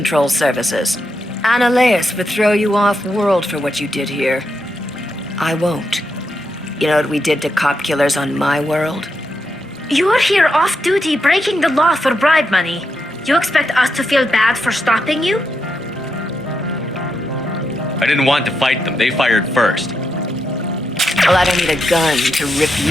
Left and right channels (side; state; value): both; normal; correlation 0.83